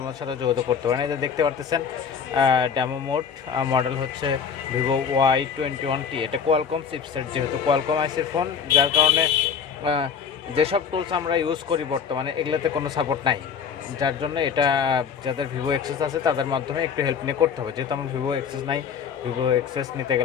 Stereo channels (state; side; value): quieter; right; 6.9 dB